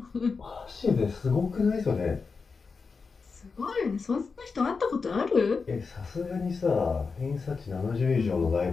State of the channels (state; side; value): quieter; right; 4.8 dB